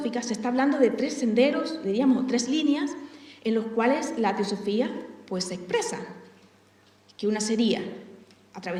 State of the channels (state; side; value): identical; both; correlation 1.00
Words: se está hablando de tres senderos, diríamos, tres líneas, en los cuales la teosofía se expresa. Que una sería a